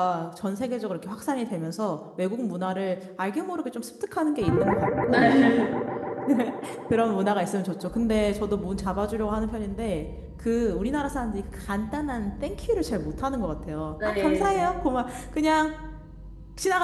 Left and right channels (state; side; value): identical; both; correlation 1.00